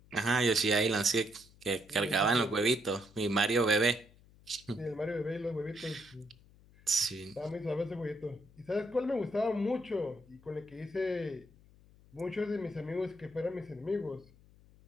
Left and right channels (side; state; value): left; noise; hum, 26 dB below the sound